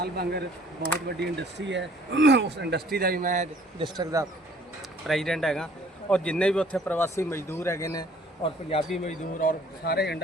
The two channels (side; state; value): both; normal; correlation 0.57